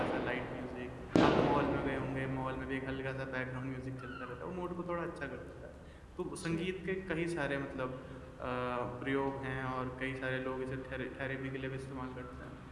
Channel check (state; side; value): identical; both; correlation 1.00